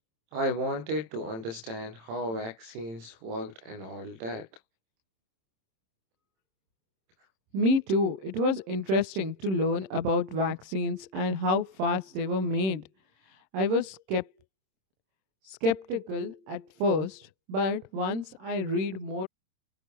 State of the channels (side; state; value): left; late; 26 ms